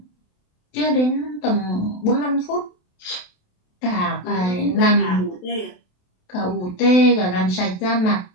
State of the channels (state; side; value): late; right; 27 ms